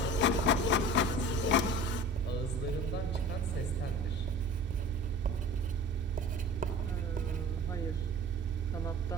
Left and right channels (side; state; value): both; normal; correlation 0.39